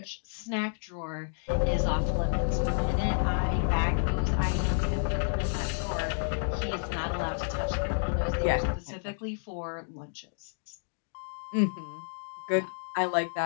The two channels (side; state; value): right; silent; digital silence